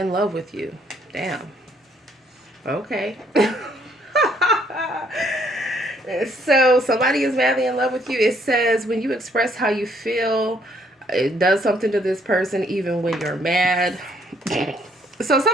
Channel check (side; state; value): both; normal; correlation 0.67